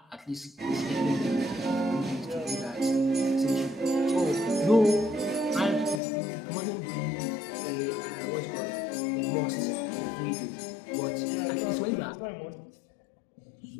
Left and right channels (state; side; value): drops out; right; at 6.0 s